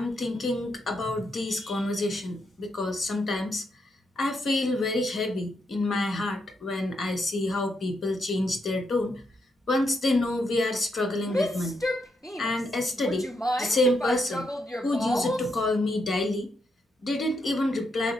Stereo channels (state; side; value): normal; both; correlation 0.80